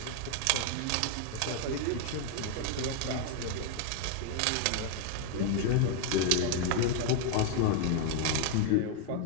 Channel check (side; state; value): both; different; correlation 0.00